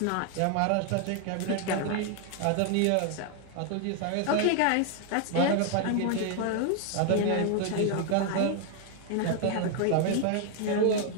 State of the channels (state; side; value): different; both; correlation 0.00